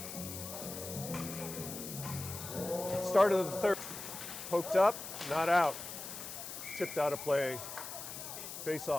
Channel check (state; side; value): noise; left; hiss, 9 dB below the sound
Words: start of the third, poked up, not out, tipped out of play, face